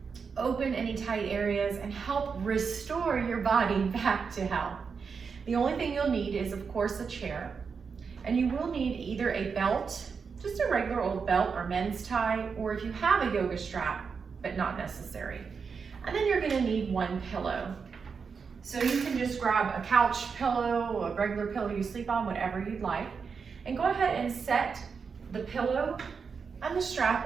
open any tight areas, and help restore your body back to health. The only thing you'll need is, of course, a chair. And you will need either a belt, just a regular old belt or men's tie, or if you have a yoga strap, but not necessary. And then you're gonna need one pillow. So you can just grab a couch pillow, a regular pillow you sleep on, whatever you'd like, and go ahead and set the pillow and the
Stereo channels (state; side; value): quieter; left; 5.7 dB